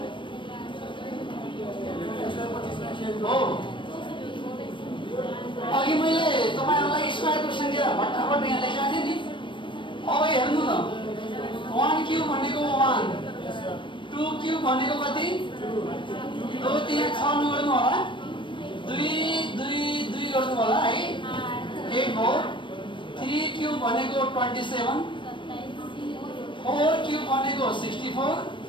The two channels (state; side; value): late; right; 0.24 ms